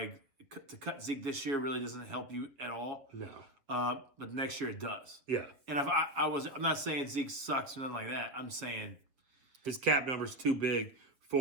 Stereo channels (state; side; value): late; left; 7.2 ms